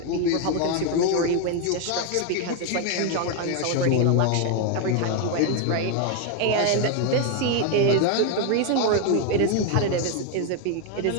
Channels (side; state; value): both; different; correlation 0.01